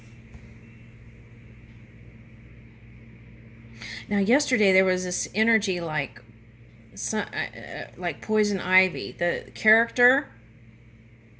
Now, yesterday there was this energy like poison ivy. The character.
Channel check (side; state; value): both; identical; correlation 1.00